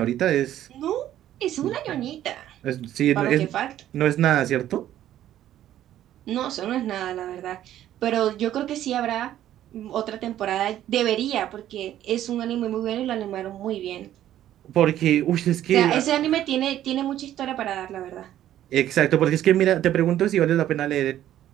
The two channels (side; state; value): left; quieter; 12.2 dB